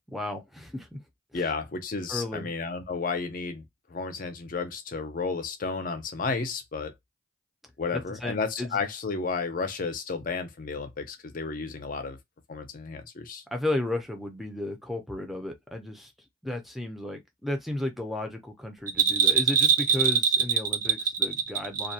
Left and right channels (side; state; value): both; normal; correlation 0.04